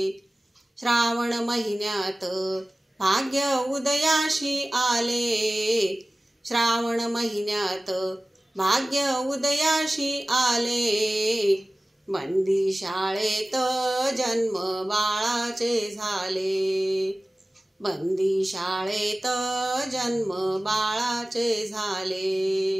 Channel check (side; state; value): both; normal; correlation 0.97